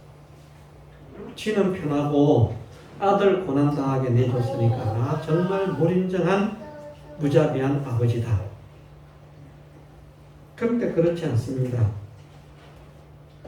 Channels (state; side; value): identical; both; correlation 1.00